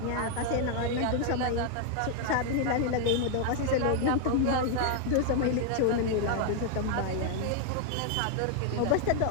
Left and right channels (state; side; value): different; both; correlation 0.00